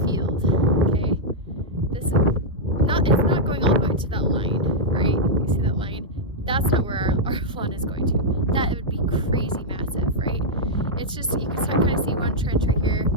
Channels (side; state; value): both; normal; correlation -0.05